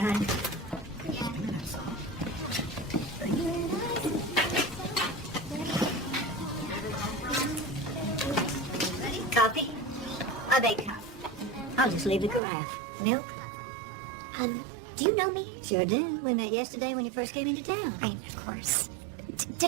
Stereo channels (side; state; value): left; drops out; at 12.4 s